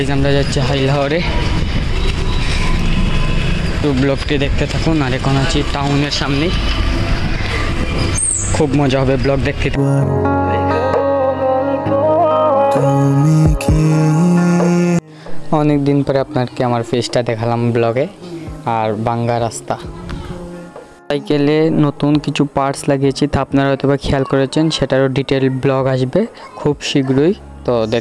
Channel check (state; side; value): identical; both; correlation 1.00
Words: আমরা যাচ্ছি হাইলাহরে, তো ব্লগটি দেখতে থাকুন। আর এখন আছি টাউনের সামনে, খুব মজা হবে ব্লগ দেখতে। অনেক দিন পরে আপনাকে আমার ফেসটা দেখালাম ব্লগে। আর বাঙ্গা রাস্তা, সাইকেলে নতুন কিছু পার্টস লাগিয়েছি, তা আপনারা হয়তো বা খেয়াল করেছেন। সেটারও ডিটেল ব্লগ আসবে খুব শীঘ্রই, তো